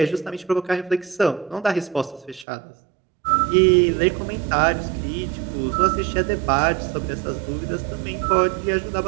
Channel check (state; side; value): drops out; left; at 2.5 s